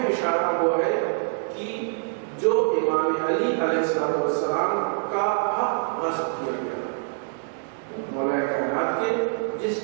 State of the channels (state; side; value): silent; left; digital silence